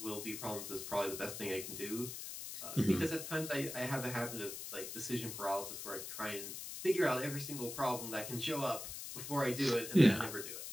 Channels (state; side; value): noise; left; hiss, 8 dB below the sound